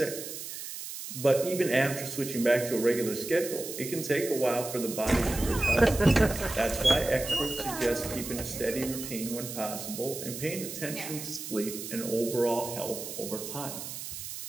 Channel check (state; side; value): noise; right; hiss, 8 dB below the sound